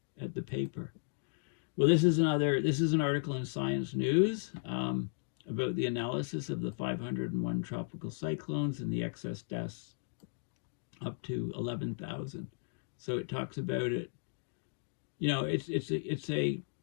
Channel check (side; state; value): right; silent; digital silence